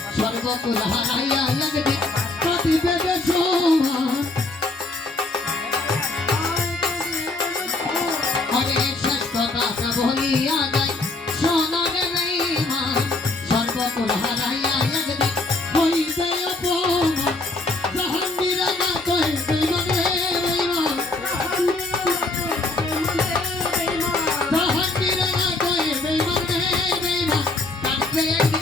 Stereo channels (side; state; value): right; quieter; 3.1 dB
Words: সর্বকুল হারাইয়া একদিন কাঁদিবে বেসমান আরে শেষ কথা বলিয়া যায় সোনার বেঈমান সর্বকুল হারাইয়া একদিন হইবে অপমান জাহাঙ্গীর না কই বেঈমান রে বেঈমান জাহাঙ্গীর না কই বেঈমান রে বেঈমান কাঁদবে